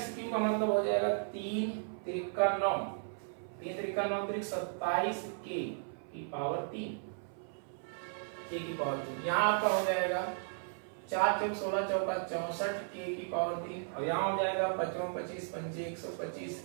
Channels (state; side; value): silent; left; 54 dB below the other